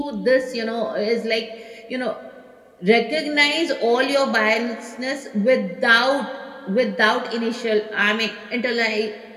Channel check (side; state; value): both; identical; correlation 1.00